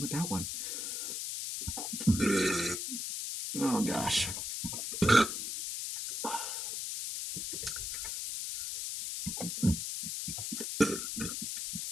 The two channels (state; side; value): noise; left; hiss, 3 dB below the sound